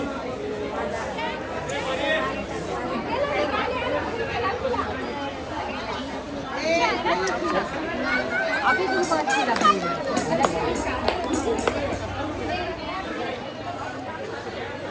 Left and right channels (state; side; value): identical; both; correlation 1.00